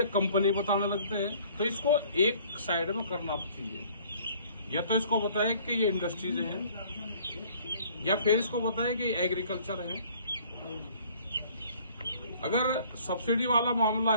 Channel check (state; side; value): inverted; both; correlation -0.55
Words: कंपनी बताने लगते हैं। तो इसको एक साइड में करना चाहिए, या तो इसको बताए कि ये इंडस्ट्रीज हैं, या फिर इसको बताए कि एग्रीकल्चर है। अगर सब्सिडी वाला मामला